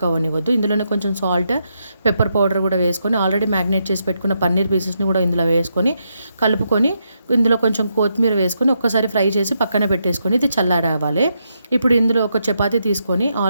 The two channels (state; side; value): inverted; both; correlation -0.81